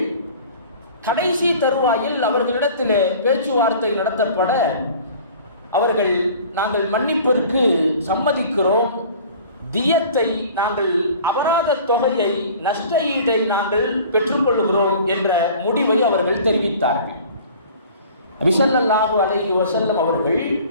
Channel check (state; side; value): inverted; both; correlation -0.46